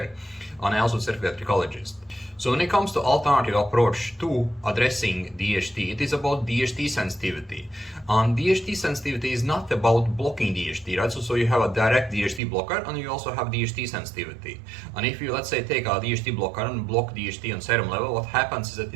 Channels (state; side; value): drops out; left; at 12.4 s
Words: And I also certified trichologist. So when it comes to alternative approach to addressing DHT, it is about DHT sensitivity. And DHT sensitivity is not about blocking DHT, right? So you have a direct DHT blocker and you also have DHT sensitivity. And if you, let's say, take a DHT blocker and block DHT on serum level, what happens is that